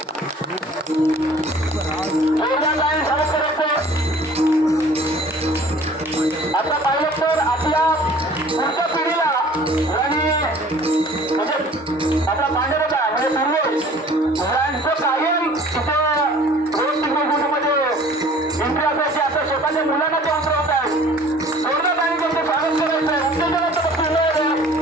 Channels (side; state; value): both; normal; correlation 0.50